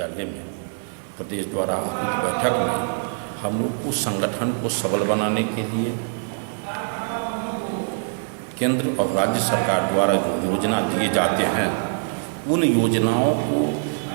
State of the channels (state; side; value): silent; left; 63 dB below the other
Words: में प्रदेश द्वारा आयोजित बैठक में हम लोग उस संगठन को सबल बनाने के लिए केंद्र और राज्य सरकार द्वारा जो योजना दिए जाते हैं, उन योजनाओं को